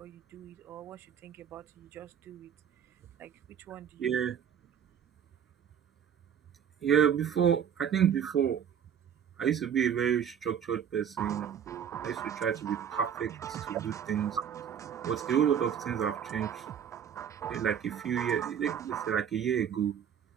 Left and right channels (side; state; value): left; quieter; 8.5 dB